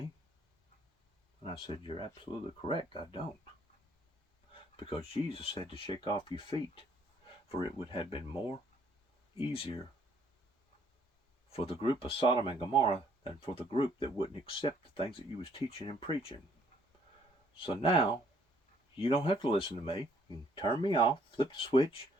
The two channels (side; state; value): both; normal; correlation 0.65